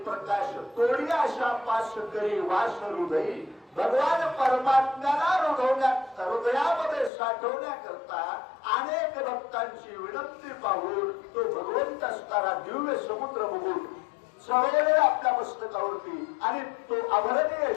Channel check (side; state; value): right; drops out; at 7.1 s